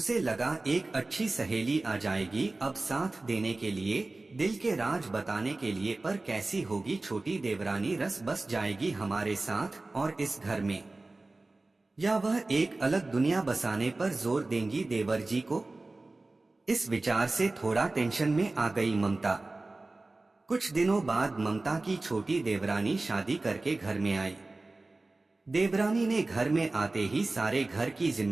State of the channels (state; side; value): quieter; left; 3.1 dB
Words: लगा एक अच्छी सहेली आ जाएगी अब साथ देने के लिए, दिल के राज बताने के लिए। पर कैसी होगी छोटी देवरानी, रस बस जाएगी हमारे साथ और इस घर में, या वह एक अलग दुनिया बसाने पर जोर देंगी देवर जी को। इस विचार से थोड़ा टेंशन में आ गई ममता। कुछ दिनों बाद ममता की छोटी देवरानी शादी करके घर में आई। देवरानी ने घर में आते ही सारे घर की